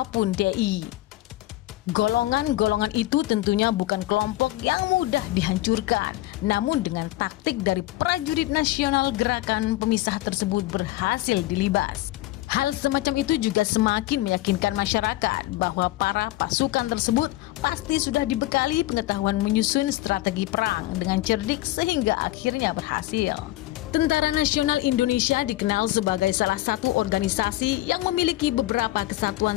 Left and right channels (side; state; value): right; quieter; 17.0 dB